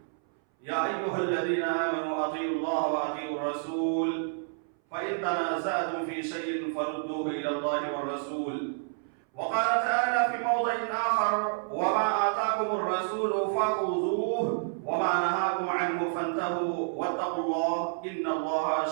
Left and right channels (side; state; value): left; silent; 58 dB below the other